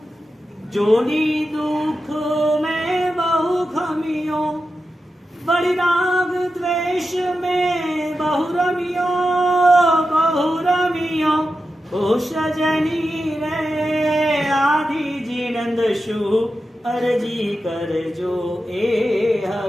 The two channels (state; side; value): normal; both; correlation 0.91